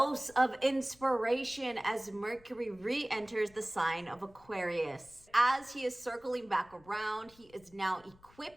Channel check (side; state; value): left; noise; rumble, 27 dB below the sound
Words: of inspiration as Mercury re-enters the sign of Aquarius. As he is circling back around, he is now